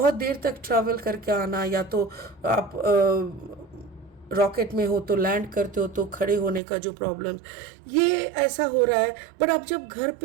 देर तक ट्रैवल करके आना, या तो आप रॉकेट में हो तो लैंड करते हो तो खड़े होने का जो प्रॉब्लम, ये ऐसा हो रहा है। बट आप जब घर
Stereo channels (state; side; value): drops out; left; at 6.6 s